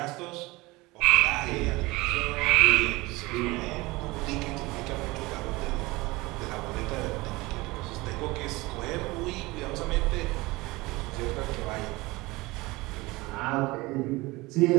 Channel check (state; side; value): quieter; left; 21.9 dB